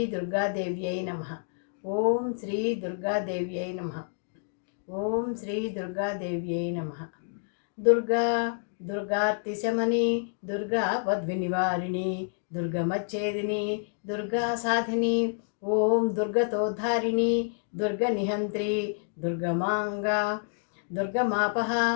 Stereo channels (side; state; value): right; silent; digital silence